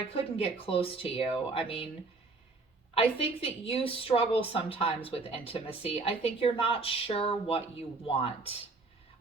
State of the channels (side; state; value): left; quieter; 3.7 dB